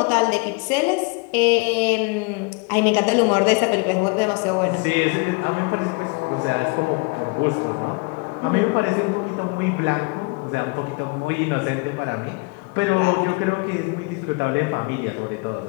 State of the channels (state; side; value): quieter; right; 30.3 dB